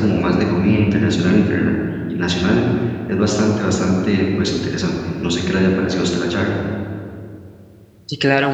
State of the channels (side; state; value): both; identical; correlation 1.00